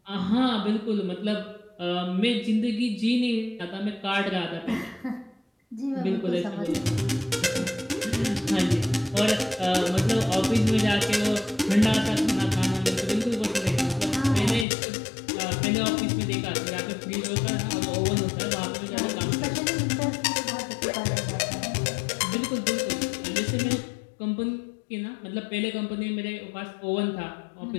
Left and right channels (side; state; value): right; drops out; at 14.7 s